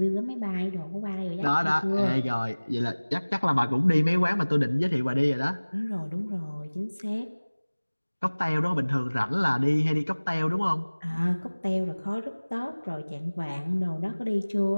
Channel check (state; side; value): inverted; both; correlation -1.00